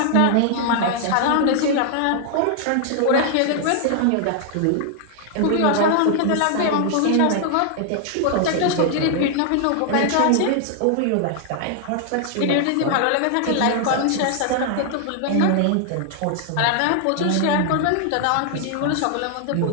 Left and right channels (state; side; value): different; both; correlation 0.00